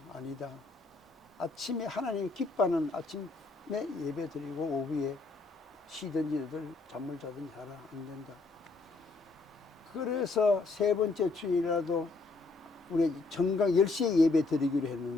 아니다. 아침에 하나님 기뻐하는 아침에 예배 드리고 오후에 쉬든지들 잠을 자든지 하라. 안 된다. 그래서 세 번째 주일이라도 우리 정각 10시에 예배 드리기로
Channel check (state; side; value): quieter; right; 3.6 dB